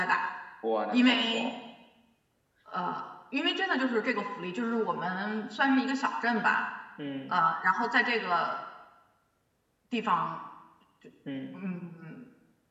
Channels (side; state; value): both; identical; correlation 1.00